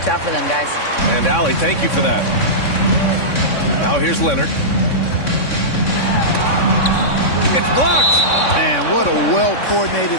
out for them, guys. And Allie, thank you for that. Now here's Leonard. It's blocked. Man, what a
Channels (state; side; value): late; right; 3.6 ms